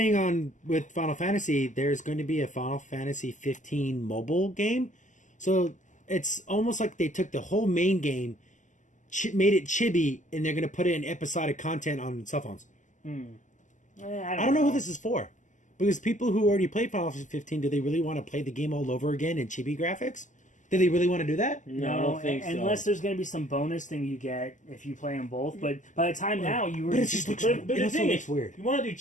on with Final Fantasy, there's going to be a Final Fantasy 15 mobile game. So it's almost like they took the whole main game, made it chibi, and they're going to put it in episodic content on cell phones. I don't know who this is for. Because people who already played Final Fantasy 15, do they really want to play the game all over again in chibi graphics? Do they really want to do that? No, I don't think so. Unless there's going to be some bonus thing you get if you play them both. But by the time now, you were But it just looks But It the also thing looks is, weird. you want to do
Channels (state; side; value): late; right; 0.37 ms